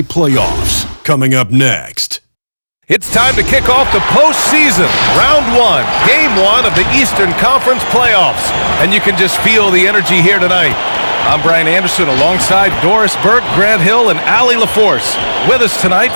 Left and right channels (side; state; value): both; inverted; correlation -1.00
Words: playoffs, coming up next. It's time to kick off the postseason. Round 1, Game 1 of the Eastern Conference playoffs. And you can just feel the energy here tonight. I'm Brian Anderson alongside Doris Burke, Grant Hill, and Allie LaForce. With us tonight,